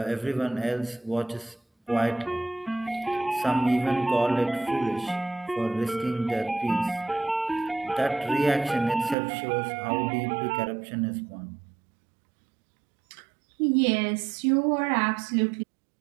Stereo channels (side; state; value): left; drops out; at 9.2 s